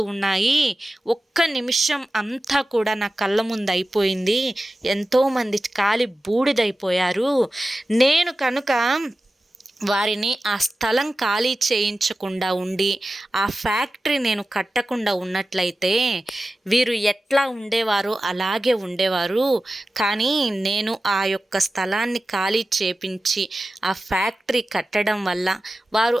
ఉన్నాయి. ఒక్క నిమిషం అంతా కూడా నా కళ్ళ ముందు అయిపోయింది. ఎంతోమంది కాలి బూడిదైపోయారు. నేను కనుక వారిని ఆ స్థలం ఖాళీ చేయించకుండా ఉండి ఆ ఫ్యాక్టరీ నేను కట్టకుండా ఉన్నట్లయితే వీరు ఎట్లా ఉండేవారో అలాగే ఉండేవారు. కానీ నేను ఆ యొక్క స్థలాన్ని ఖాళీ చేపించి ఆ ఫ్యాక్టరీ కట్టడం వల్ల, వారు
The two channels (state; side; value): normal; both; correlation 0.95